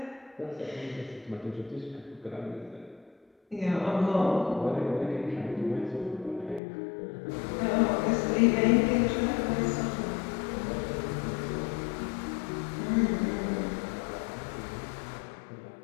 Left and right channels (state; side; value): drops out; right; at 6.6 s